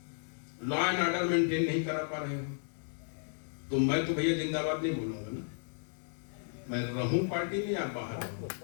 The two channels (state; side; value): silent; right; digital silence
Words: लॉ एंड ऑर्डर मेंटेन नहीं करा पा रहे हो। तो मैं तो भैया जिंदाबाद नहीं बोलूंगा ना। मैं रहूं पार्टी में या बाहर रहूं,